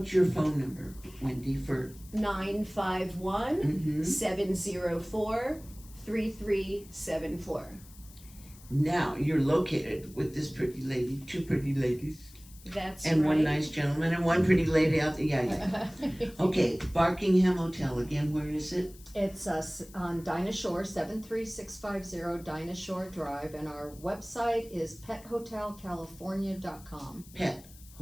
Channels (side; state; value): left; noise; hiss, 22 dB below the sound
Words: your phone number, Wendy, for 951 704 3374. Now you're located with this pretty lady, 2 pretty ladies, That's and right. one nice gentleman, and one pretty lady out there. Yeah. Okay, Barkingham Hotel again. Where is it? It's on Dinah Shore, 73650 Dinah Shore Drive, and our website is pethotelcalifornia.com. Pet